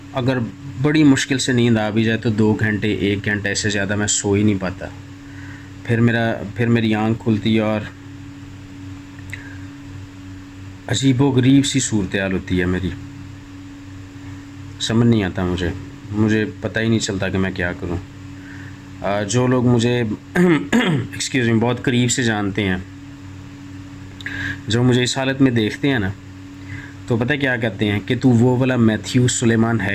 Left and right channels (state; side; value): identical; both; correlation 1.00